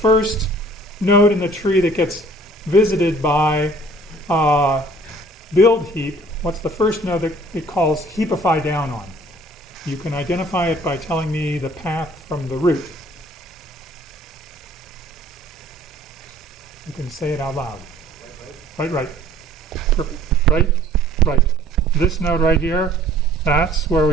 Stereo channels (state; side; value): normal; both; correlation 0.54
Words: node in the tree that gets visited by BuildHeap? What's the first node that it calls heapify down on? You can identify it by telling me the path from the root. You can say it out loud. Right. Perfect. Right. This node right here, that's where